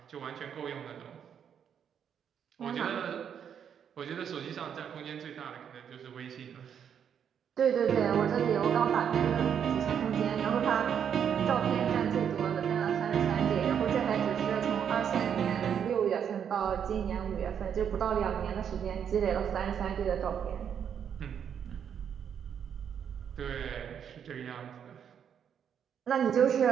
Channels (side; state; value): left; quieter; 8.2 dB